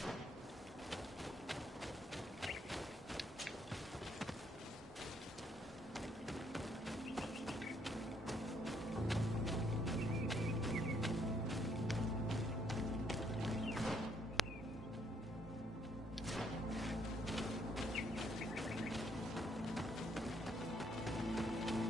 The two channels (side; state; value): both; normal; correlation 0.71